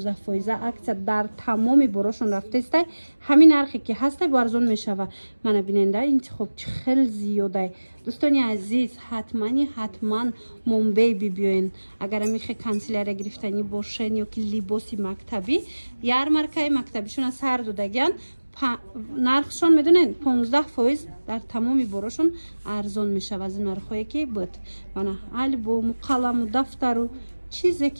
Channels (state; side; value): inverted; both; correlation -1.00